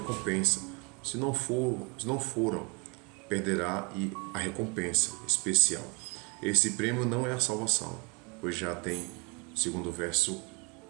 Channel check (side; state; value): left; quieter; 32.0 dB